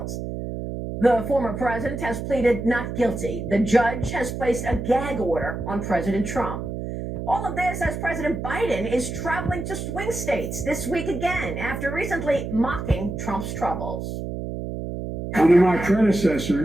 The former president has pleaded not guilty. The judge has placed a gag order on President Trump. All of this as President Biden is traveling to swing states this week again after recently mocking Trump's troubles. Under my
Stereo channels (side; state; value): right; noise; hum, 6 dB below the sound